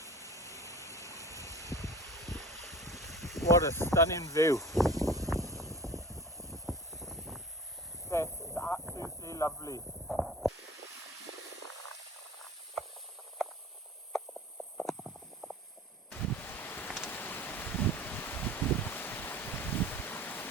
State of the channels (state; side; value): normal; both; correlation 0.40